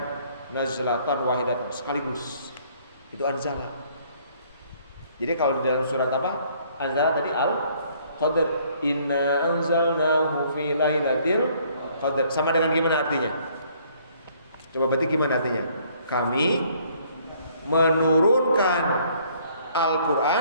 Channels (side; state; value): both; inverted; correlation -0.62